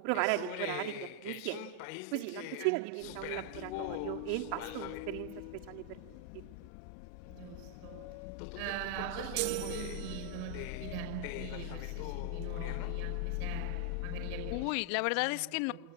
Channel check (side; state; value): both; different; correlation 0.00